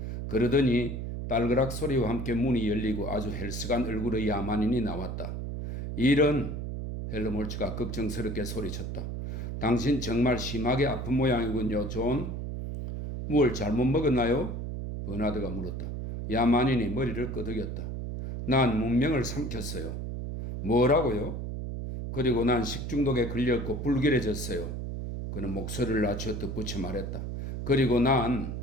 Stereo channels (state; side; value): noise; right; hum, 5 dB below the sound